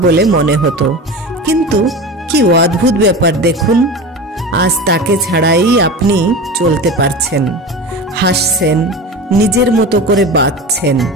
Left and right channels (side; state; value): both; normal; correlation 0.30